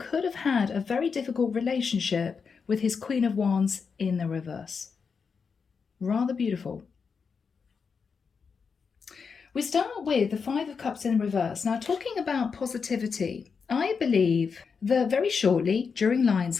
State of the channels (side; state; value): right; quieter; 5.6 dB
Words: have had a very difficult relationship with his Queen of Wands in the reverse. Rather beautiful. We start with the 5 of Cups in reverse. Now, talking about positivity, I believe that very shortly during